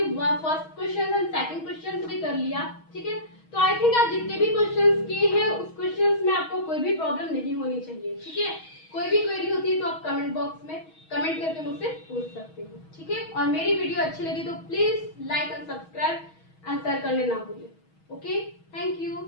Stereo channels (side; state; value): right; late; 6.3 ms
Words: first question and second question भी कर लिया, ठीक है। तो आई थिंक आप जितने भी क्वेश्चंस किए हैं उस क्वेश्चंस में आपको कोई भी प्रॉब्लम नहीं होनी चाहिए, ठीक है। कोई भी क्वेरी होती है तो आप कमेंट बॉक्स में कमेंट करके मुझसे पूछ सकते हो, ठीक है। और मेरी वीडियो अच्छी लगी तो please like and subscribe and share करने ना भूलें। Okay, thank you.